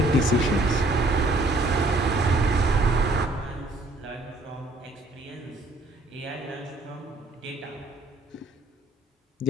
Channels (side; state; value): both; normal; correlation 0.61